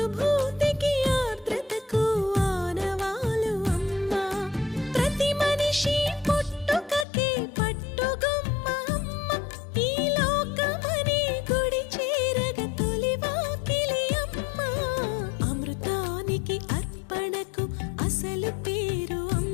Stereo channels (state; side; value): drops out; right; at 7.1 s